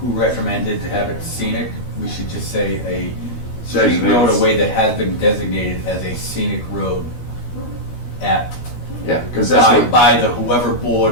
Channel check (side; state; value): right; late; 13 ms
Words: recommended to have it scenic. We should just say a street Designated. roadway that has been designated as a scenic road at Yeah, because that's what, by the whoever